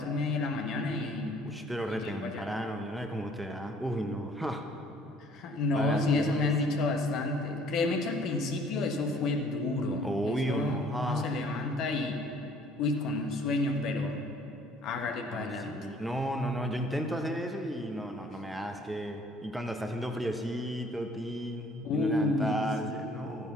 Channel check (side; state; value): both; normal; correlation 0.57